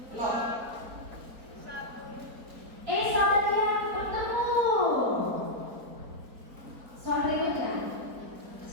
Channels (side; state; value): left; late; 4.3 ms